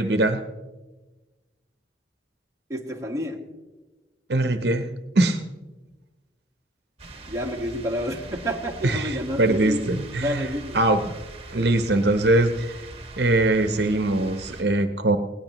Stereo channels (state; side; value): normal; both; correlation 0.50